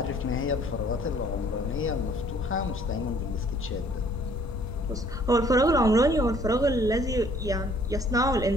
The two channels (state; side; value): normal; both; correlation 0.59